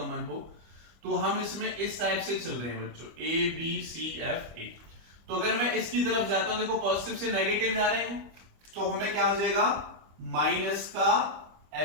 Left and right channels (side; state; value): left; late; 25 ms